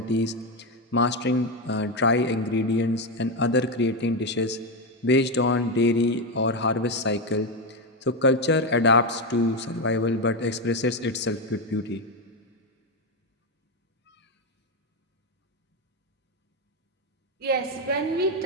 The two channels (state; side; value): normal; both; correlation 0.09